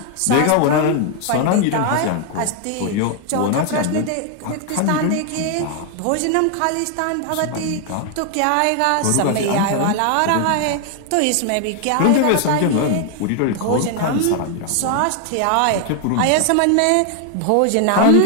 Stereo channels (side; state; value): both; different; correlation 0.00